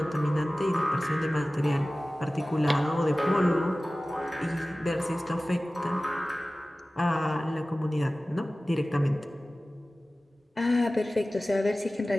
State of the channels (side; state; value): both; normal; correlation 0.97